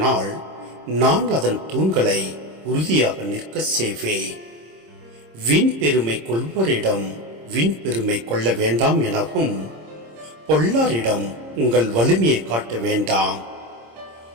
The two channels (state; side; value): late; left; 26 ms